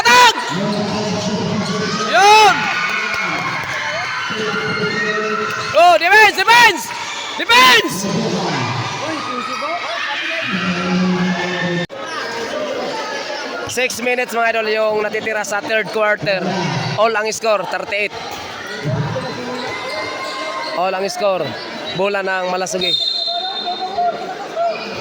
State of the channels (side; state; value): both; identical; correlation 1.00